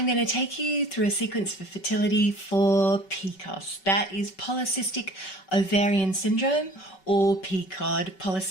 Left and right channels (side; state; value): right; late; 5.3 ms